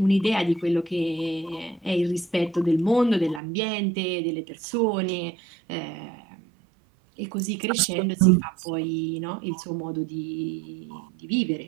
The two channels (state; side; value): drops out; left; at 3.4 s